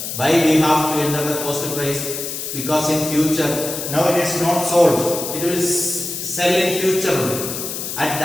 Why we have to enter the cost price? Because in future, now it is not sold, it will sell in future. At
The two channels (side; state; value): left; noise; hiss, 6 dB below the sound